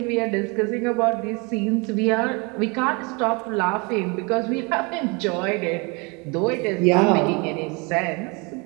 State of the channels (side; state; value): left; quieter; 29.7 dB